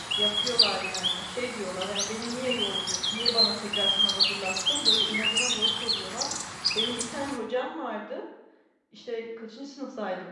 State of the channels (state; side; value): identical; both; correlation 1.00